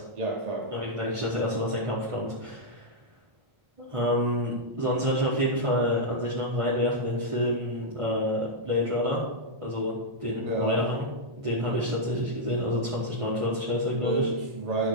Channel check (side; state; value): left; late; 1.4 ms